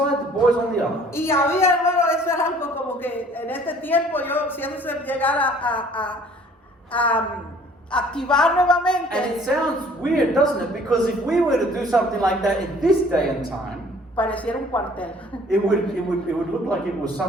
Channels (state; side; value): normal; both; correlation 0.55